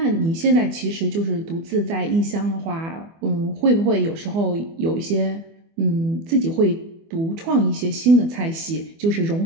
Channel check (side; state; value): left; late; 24 ms